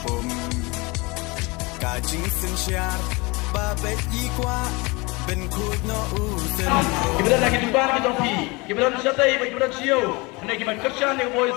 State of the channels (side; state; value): right; quieter; 25.8 dB